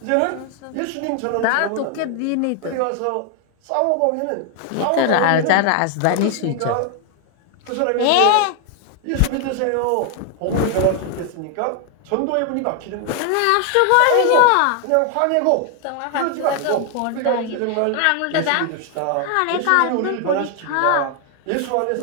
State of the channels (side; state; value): both; different; correlation 0.00